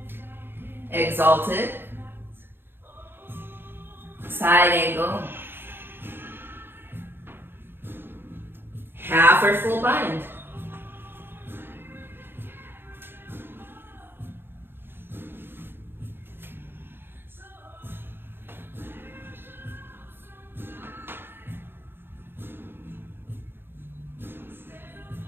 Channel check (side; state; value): left; late; 0.10 ms